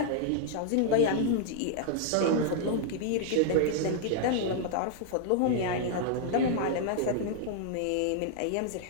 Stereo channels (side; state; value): both; different; correlation 0.00